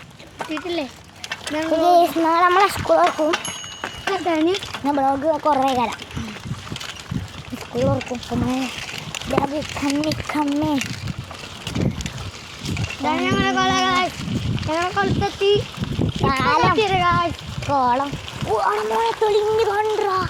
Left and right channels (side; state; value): both; identical; correlation 1.00